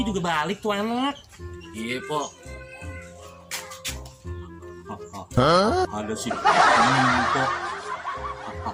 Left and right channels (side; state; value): both; identical; correlation 1.00